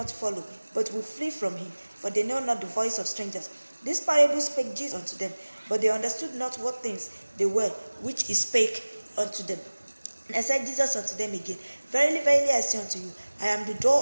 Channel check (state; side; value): inverted; both; correlation -1.00